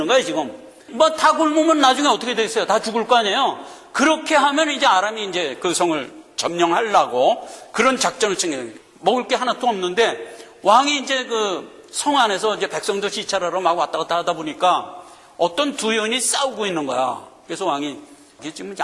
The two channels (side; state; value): both; identical; correlation 1.00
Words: 거야 지금. 뭐 다 굶으면 나중에 어떻게 되겠어요? 다 죽을 거 아니에요. 그렇게 하면 이제 아람이 이제 그 성을 점령하려고 그런 작전을 챙겨요. 먹을 게 하나도 없는데 왕이 이제 그 성 안에서 이제 백성들 시찰하러 막 왔다 갔다 하다 보니까 어떤 두 여인이 싸우고 있는 거야. 그래서 왕이 이게 지금